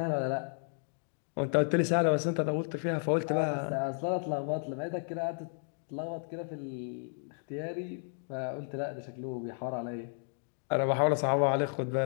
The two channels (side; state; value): right; silent; digital silence